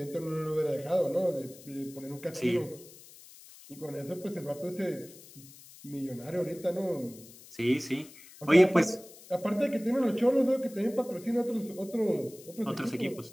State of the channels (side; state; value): left; noise; hiss, 20 dB below the sound